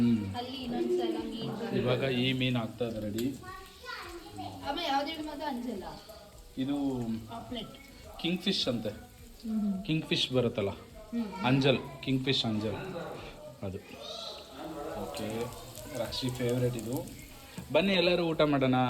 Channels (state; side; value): identical; both; correlation 1.00